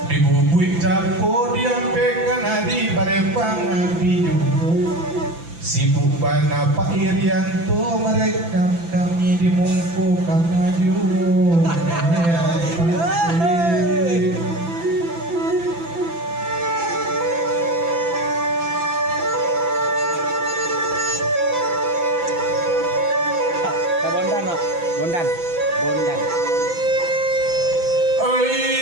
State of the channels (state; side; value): late; left; 5.9 ms